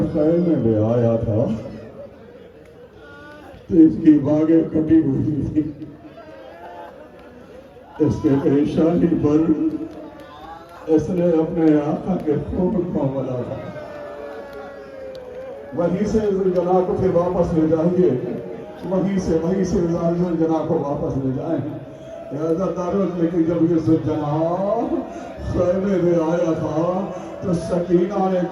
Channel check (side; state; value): both; identical; correlation 1.00